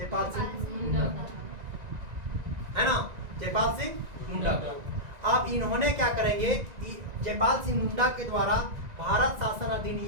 सिंह मुंडा, है ना, जयपाल सिंह मुंडा को। अब इन्होंने क्या करेंगे? जयपाल सिंह मुंडा के द्वारा भारत शासन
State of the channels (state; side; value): late; left; 1.9 ms